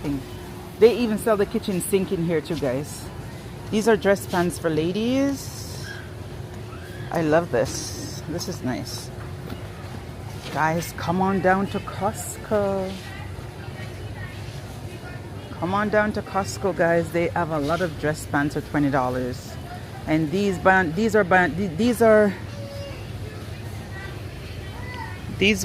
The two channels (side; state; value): both; identical; correlation 1.00